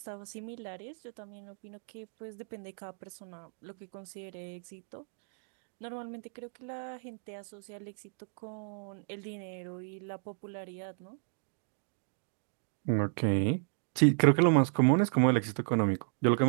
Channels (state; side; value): silent; left; digital silence